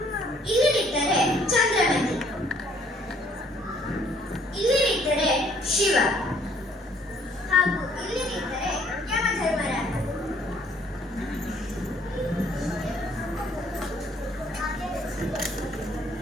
ಇಲ್ಲಿ ನಿಂತರೆ ಚಂದ್ರಮತಿ, ಇಲ್ಲಿ ನಿಂತರೆ ಶಿವ, ಹಾಗೂ ಇಲ್ಲಿ ನಿಂತರೆ ಯಮಧರ್ಮರಾಜ.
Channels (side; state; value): both; normal; correlation 0.62